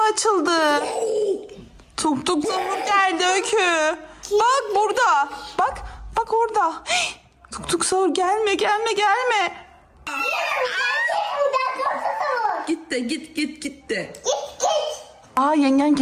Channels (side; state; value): both; identical; correlation 1.00